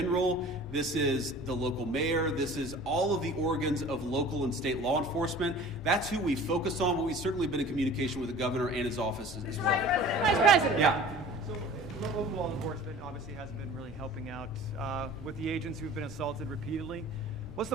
this is the local mayor, this is all of the organs of local and state law enforcement. That's who we focus on, but we've certainly been in communication with the governor and his office as well. Vice President. Yeah. So local law enforcement obviously hasn't been really helping out with the agents who've been assaulted repeatedly. What's the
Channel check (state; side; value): normal; both; correlation 0.44